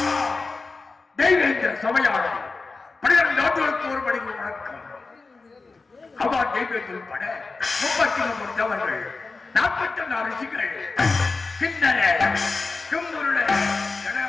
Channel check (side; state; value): right; quieter; 4.0 dB